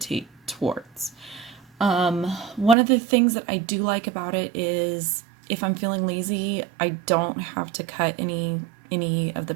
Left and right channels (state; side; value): drops out; left; at 2.8 s